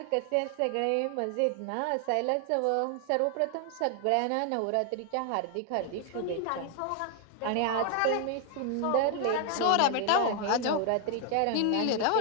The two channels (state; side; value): different; both; correlation 0.00